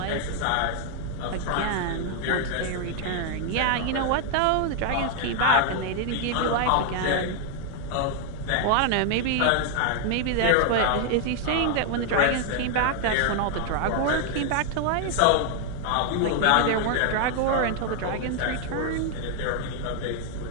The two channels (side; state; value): both; different; correlation 0.00